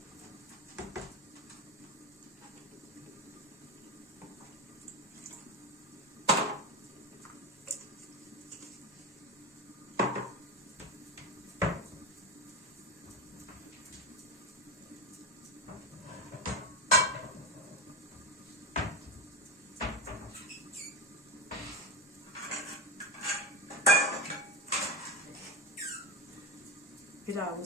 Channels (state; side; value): normal; both; correlation 0.19